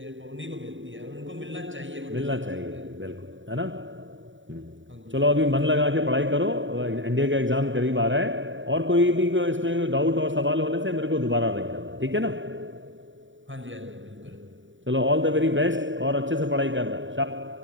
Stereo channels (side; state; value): left; late; 0.55 ms